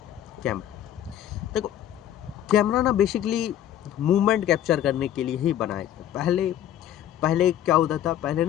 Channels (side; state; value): right; quieter; 11.3 dB